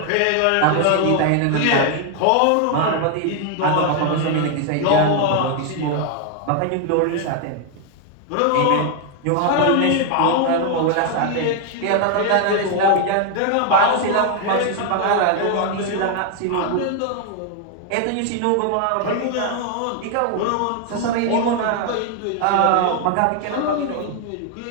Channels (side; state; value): both; different; correlation 0.00